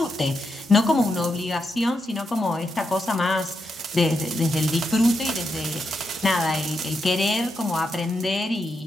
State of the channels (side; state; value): both; normal; correlation 0.84